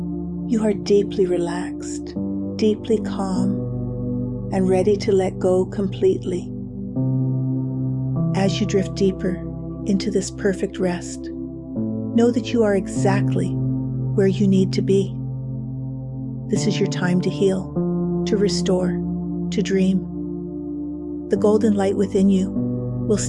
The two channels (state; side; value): identical; both; correlation 1.00